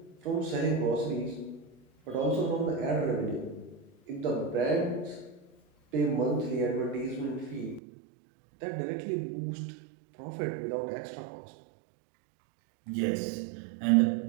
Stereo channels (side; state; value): left; drops out; at 7.8 s